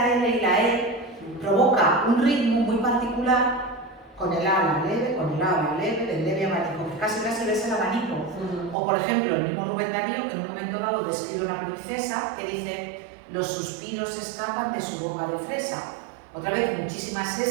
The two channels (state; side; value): drops out; left; at 8.8 s